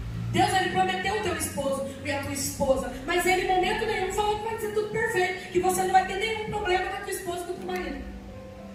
Deus, ele prometeu o teu esposo e a tua esposa, mas ele em momento nenhum falou que vai ser tudo perfeito, que você não vai ter nenhum problema com a tua esposa e com o teu marido.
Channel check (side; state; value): both; identical; correlation 1.00